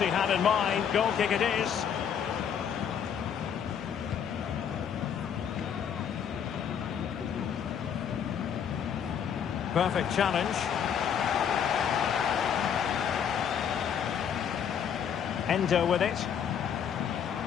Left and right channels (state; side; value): quieter; right; 8.1 dB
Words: had in mind. Goal kick it is. Perfect challenge. Endo with it.